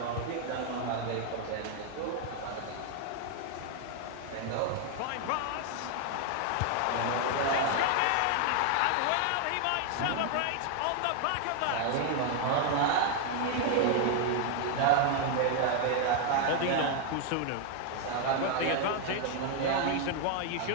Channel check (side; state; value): both; different; correlation 0.00